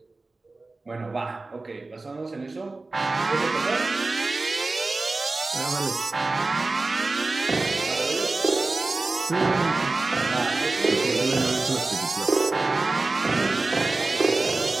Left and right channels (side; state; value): left; quieter; 3.3 dB